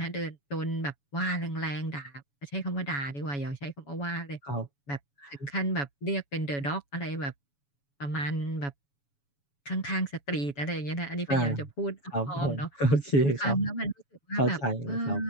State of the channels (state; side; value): late; right; 7.1 ms